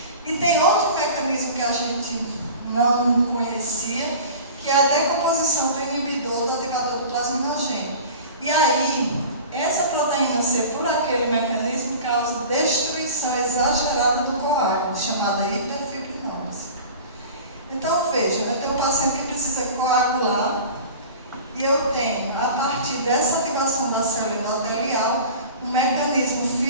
E tem outro mecanismo que a gente não conhecia, que é a decomposição do inibidor do ativador do plasminogênio. E aí, essa proteína C, por aquele mecanismo, causa destruição exagerada do coágulo. chamada hiperfibrinose. Então, veja, eu tenho um paciente que precisa coagular e eu tenho, a partir dessa ativação da célula endotelial, um mecanismo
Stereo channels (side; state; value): both; inverted; correlation -0.38